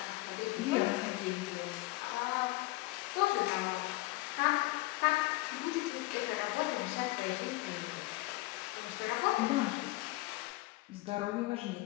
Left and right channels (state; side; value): quieter; right; 20.6 dB